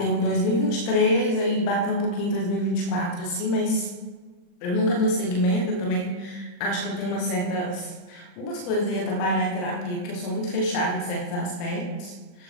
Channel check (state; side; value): late; right; 40 ms